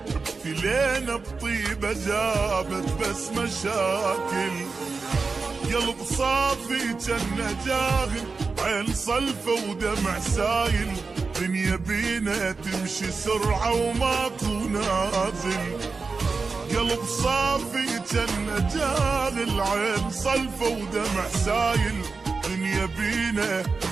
ابتلينا بطيبة جابت بس مشاكل. قلب صافي جنة جاهل، عين صلفة ودمع سايل، دنيا بينا تمشي سرعة وماكو نازل. قلب صافي جنة جاهل، عين صلفة ودمع سايل، دنيا بينا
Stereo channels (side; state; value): left; quieter; 4.4 dB